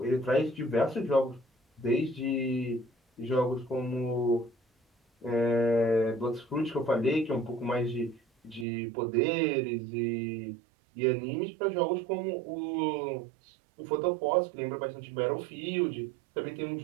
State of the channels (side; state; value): left; drops out; at 8.7 s